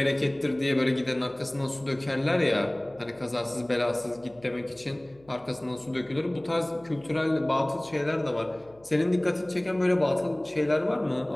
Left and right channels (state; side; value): noise; left; hum, 28 dB below the sound